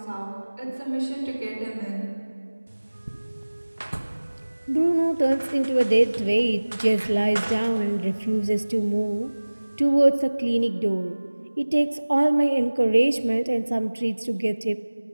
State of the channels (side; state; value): both; inverted; correlation -1.00